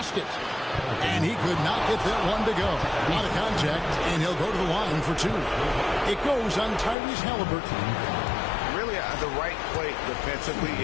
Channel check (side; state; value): right; drops out; at 7.0 s